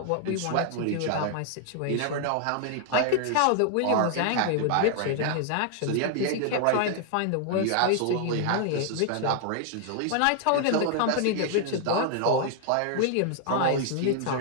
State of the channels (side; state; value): both; different; correlation 0.00